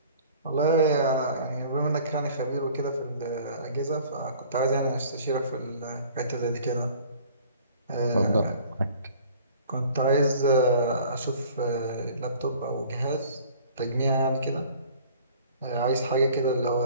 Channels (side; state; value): both; inverted; correlation -0.50